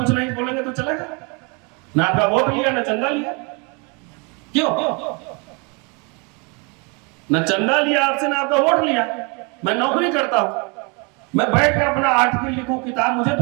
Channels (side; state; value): left; quieter; 32.1 dB